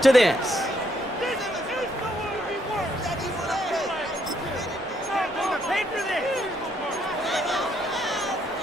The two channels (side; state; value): both; normal; correlation 0.72